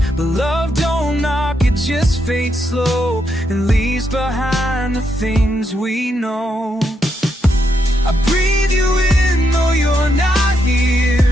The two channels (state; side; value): normal; both; correlation 0.80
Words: But love don't knock, it just fades slow and leaves behind the things we know. I breathe you in though you're not